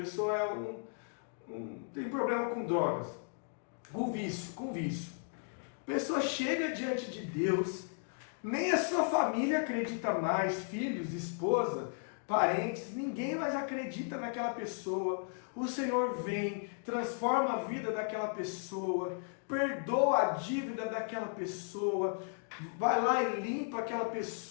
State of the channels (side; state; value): right; silent; 54 dB below the other